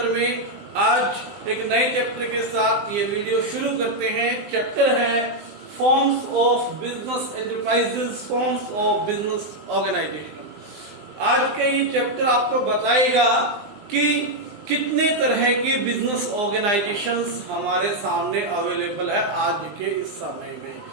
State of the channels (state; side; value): late; left; 20 ms